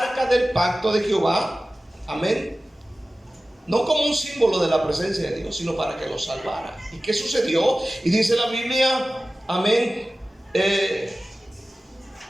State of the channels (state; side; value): normal; both; correlation 0.96